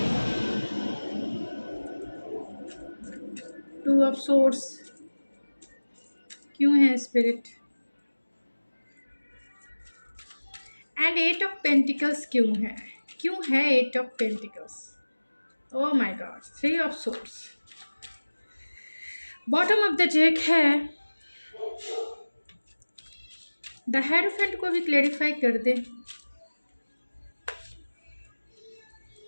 टू ऑफ सोर्ड्स क्यों है spirit, and eight of pentacles क्यों है eight of pentacles. Oh my God, three of swords. Bottom of the deck है द हेरोफेंट को भी क्लेरिफाई कर दे।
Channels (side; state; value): both; inverted; correlation -1.00